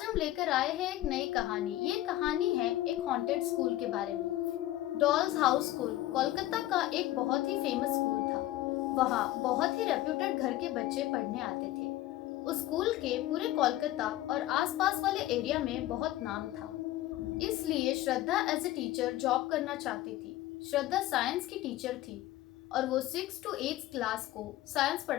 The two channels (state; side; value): quieter; right; 15.4 dB